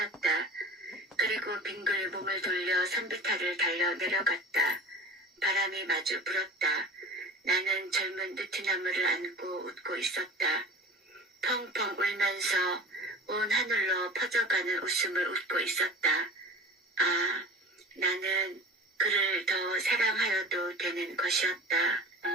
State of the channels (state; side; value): normal; both; correlation 0.37